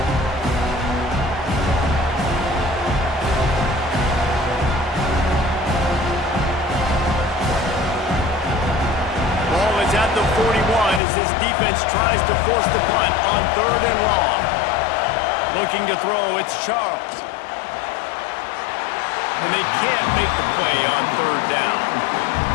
Ball is at the 41 as this defense tries to force the punt on 3rd and long. Looking to throw, it's Charles. And they can't make the play on 3rd down.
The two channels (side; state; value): right; drops out; at 11.0 s